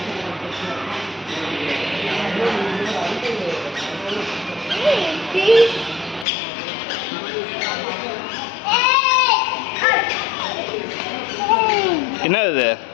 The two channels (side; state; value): right; drops out; at 6.2 s